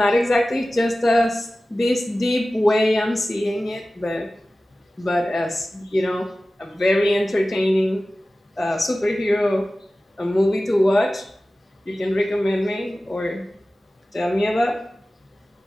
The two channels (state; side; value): normal; both; correlation 0.96